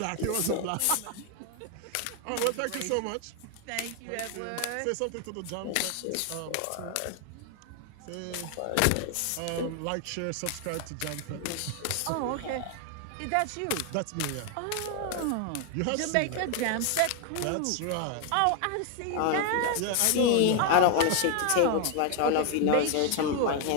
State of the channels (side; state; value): both; different; correlation 0.00